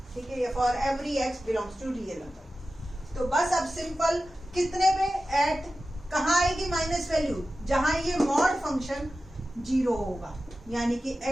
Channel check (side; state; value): both; normal; correlation 0.94